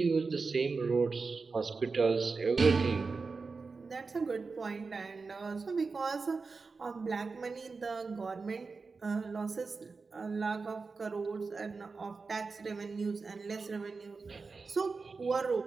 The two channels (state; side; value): quieter; left; 4.4 dB